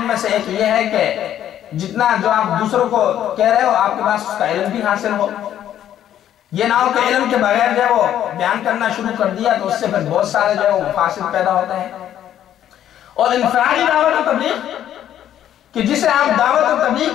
میں سے ایک یہ ہے کہ جتنا جو آپ دوسروں کو کہہ رہے ہو آپ کے پاس اس کا علم بھی حاصل ہو. یہ نہ ہو کہ علم کے بغیر جو ہے وہ بیان کرنا شروع کر دیا تو اس سے پھر بہت سارے جو ہے وہ مفاسد پیدا ہوتے ہیں. اور انفرادی دعوت و تبلیغ کہ جسے آپ دعوت و تبلیغ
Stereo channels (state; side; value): quieter; right; 11.0 dB